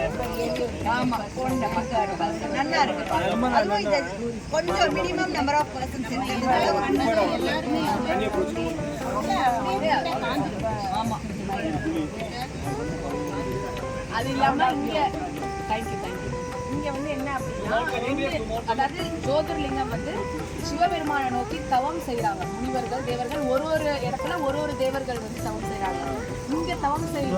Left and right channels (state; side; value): identical; both; correlation 1.00